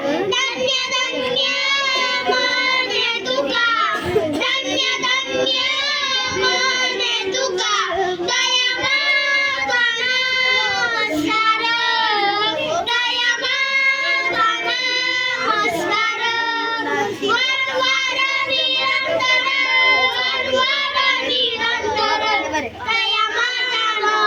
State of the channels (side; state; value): both; identical; correlation 1.00